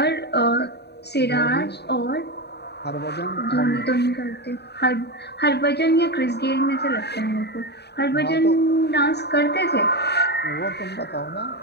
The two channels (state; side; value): late; right; 0.48 ms